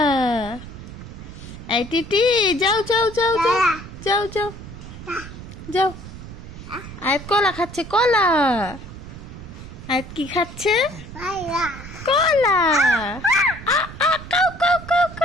এই টিটি যাও যাও যাও যাও যাও যাও যাও। আয়াত কলা খাচ্ছে, কলা। আয়াত কি খাচ্ছে? কলা। Cow cow cow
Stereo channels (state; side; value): noise; right; rumble, 13 dB below the sound